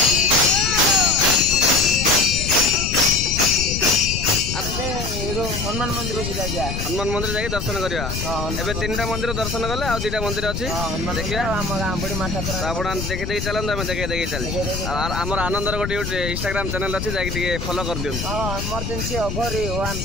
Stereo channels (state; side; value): noise; left; rumble, 4 dB below the sound